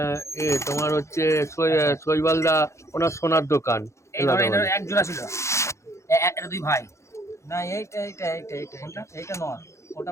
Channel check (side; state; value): right; late; 0.14 ms